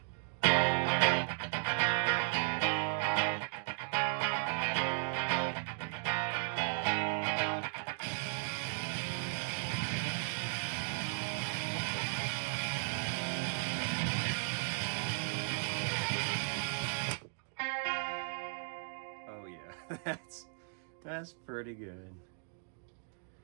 That's pretty good.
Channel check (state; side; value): silent; left; digital silence